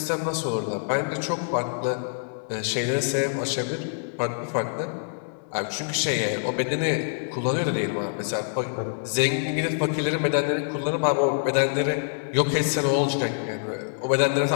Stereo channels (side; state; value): right; silent; digital silence